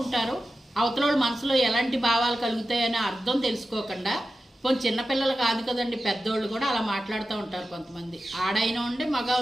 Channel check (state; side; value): normal; both; correlation 0.93